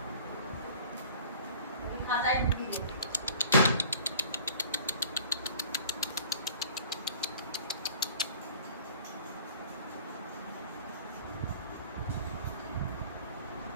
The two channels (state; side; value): inverted; both; correlation -0.48